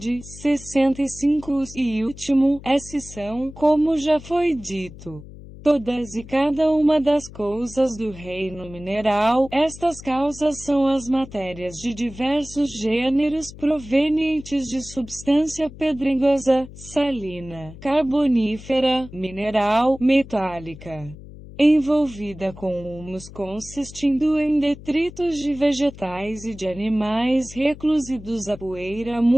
65 E último, esses são, como já foi dito, todas e cada uma das coisas do reino mineral. Estas causas são as matérias de diversos gêneros provenientes de substância pedregosa, salina, carbonífera, mineral, metálica, envolvida com humus consistindo em detritos de vegetais e de animais reclusidos a poeira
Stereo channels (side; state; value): left; noise; hum, 16 dB below the sound